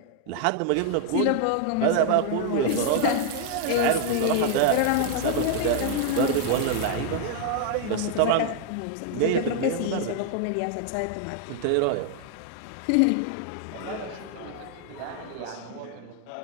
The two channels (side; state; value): both; different; correlation 0.00